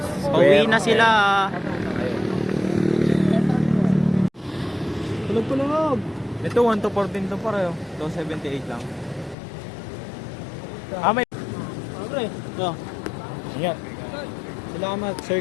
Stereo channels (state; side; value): drops out; right; at 9.3 s